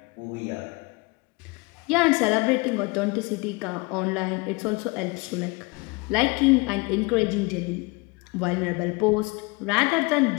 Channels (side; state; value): right; quieter; 27.2 dB